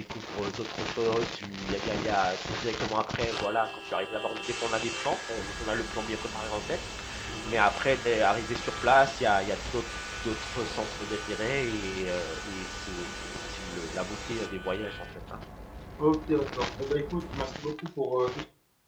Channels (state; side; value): identical; both; correlation 1.00